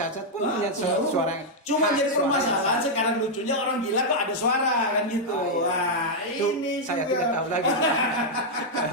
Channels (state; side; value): normal; both; correlation -0.03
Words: pun punya suara. Cuma jadi permasalahan sekarang lucunya orang gila kok ada suara kan gitu. Ini saya tidak tahu lagi.